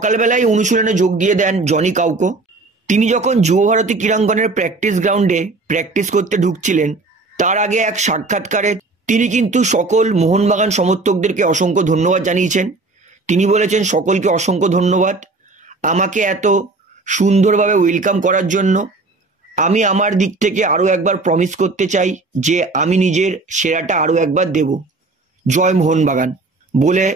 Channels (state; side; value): quieter; left; 3.5 dB